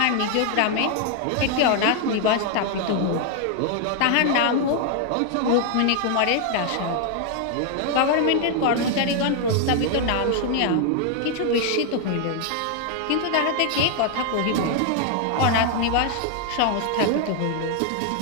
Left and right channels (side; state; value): both; different; correlation 0.00